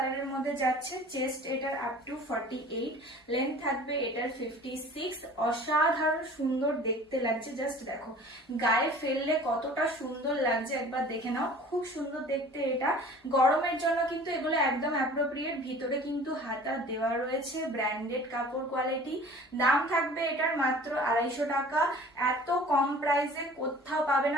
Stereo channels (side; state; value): both; normal; correlation 0.46